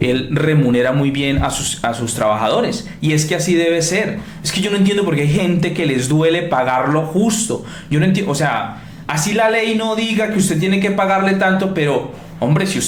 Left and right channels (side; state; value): both; identical; correlation 1.00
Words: remunera muy bien a sus trabajadores. Y es que así debe ser. Es que yo no entiendo por qué hay gente que les duele pagar lo justo. Yo no entiendo, o sea, así la ley no diga que usted tiene que pagarle tanto, pero, hombre, si